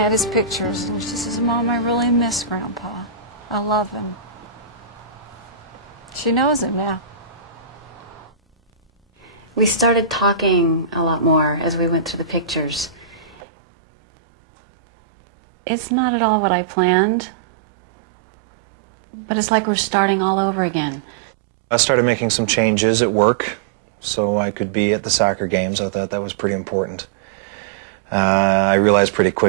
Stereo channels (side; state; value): left; drops out; at 13.4 s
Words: his pictures and she says, Mom, I really miss Grandpa. I love him. She knows him now. We started talking a lot more as we went through the pictures. It's not at all what I planned, but it's like we're starting all over again. I started making some changes at work so I could be at the soccer games. I thought that was pretty important. I realized pretty